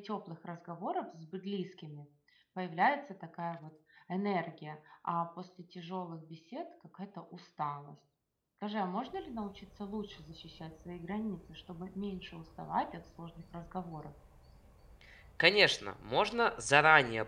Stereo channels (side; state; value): both; identical; correlation 1.00